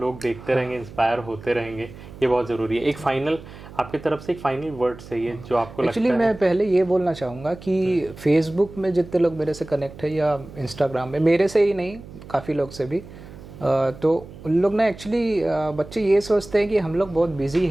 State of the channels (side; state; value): right; noise; hum, 16 dB below the sound